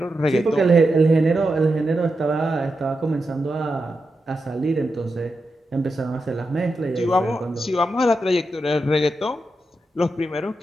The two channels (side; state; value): both; normal; correlation 0.88